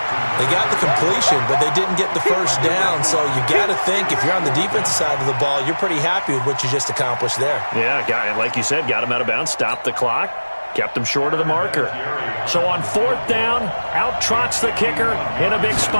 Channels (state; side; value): inverted; both; correlation -1.00